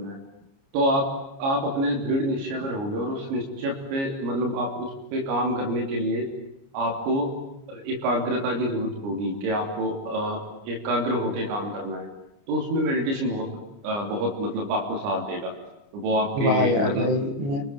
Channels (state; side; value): late; left; 29 ms